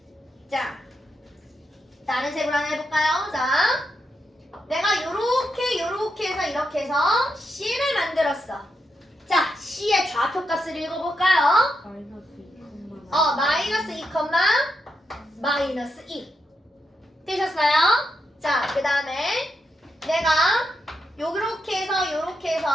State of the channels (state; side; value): normal; both; correlation 0.83